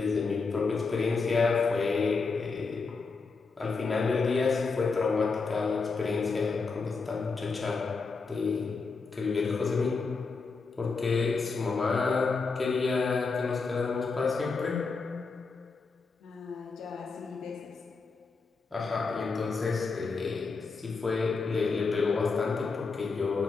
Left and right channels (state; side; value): quieter; right; 4.5 dB